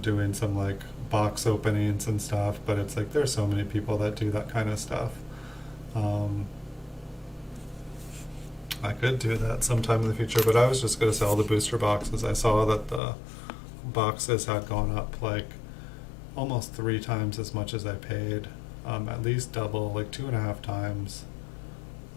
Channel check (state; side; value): drops out; right; at 13.0 s